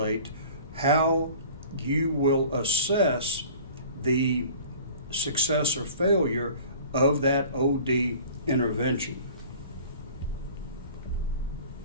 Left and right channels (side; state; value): both; inverted; correlation -0.45